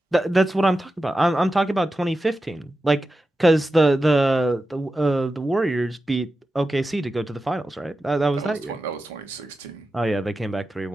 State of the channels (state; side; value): normal; both; correlation 0.92